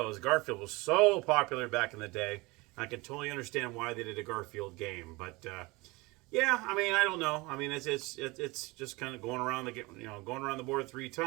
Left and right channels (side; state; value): left; quieter; 23.8 dB